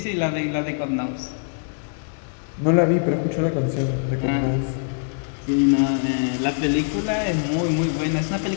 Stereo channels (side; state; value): right; silent; digital silence